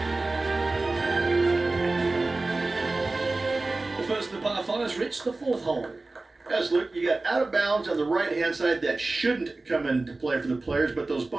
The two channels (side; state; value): left; quieter; 3.2 dB